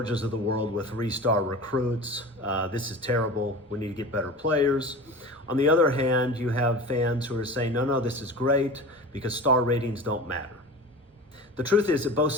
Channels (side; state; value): both; normal; correlation 0.34